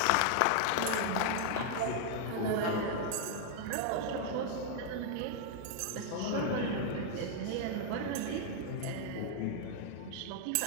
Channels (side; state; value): both; different; correlation 0.00